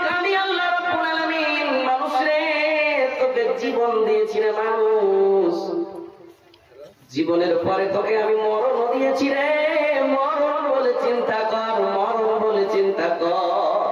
আমি আল্লাহ রাব্বুল আলামিন মানুষরে তোকে জীবন দিয়েছি রে মানুষ, জীবনের পরে তোকে আমি মরণ দিয়েছি রে। মরণ বলে চিন্তা কর, মরণ বলে চিন্তা কর।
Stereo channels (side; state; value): both; identical; correlation 1.00